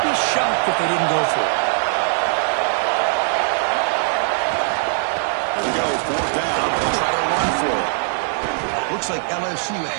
be shocked if they didn't go for it. Here we go, 4th down. They'll try to run for it. Looks like LSU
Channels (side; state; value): left; silent; 64 dB below the other